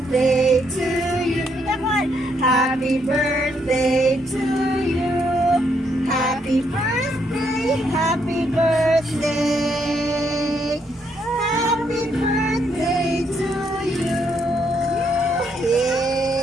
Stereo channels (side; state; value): both; normal; correlation 0.74